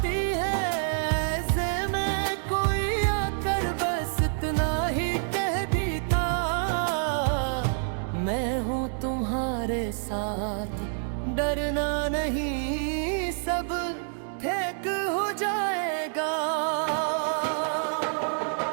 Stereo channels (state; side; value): silent; left; digital silence